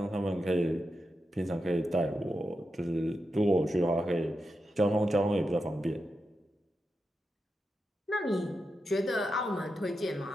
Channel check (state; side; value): normal; both; correlation 0.88